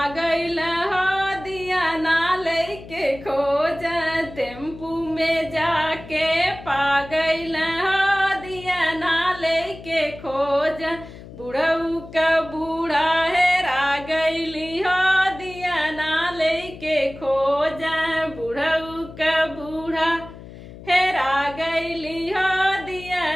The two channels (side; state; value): left; noise; hum, 16 dB below the sound